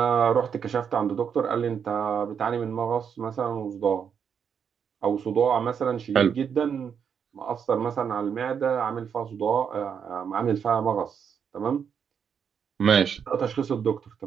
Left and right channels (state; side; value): quieter; left; 7.3 dB